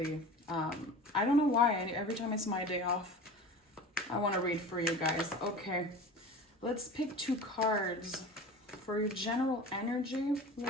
I don't know why, every time it's my day off, I want to read for you guys. Okay, let's pick two cards for your general energy.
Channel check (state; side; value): normal; both; correlation 0.36